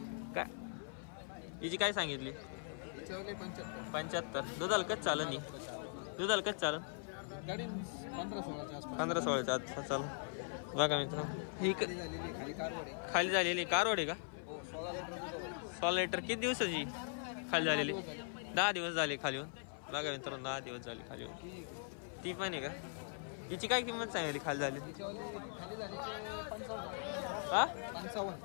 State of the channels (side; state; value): right; silent; 51 dB below the other